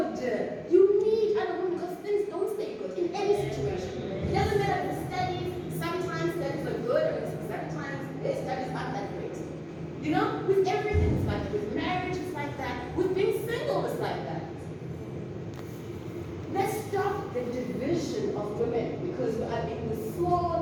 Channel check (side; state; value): both; identical; correlation 1.00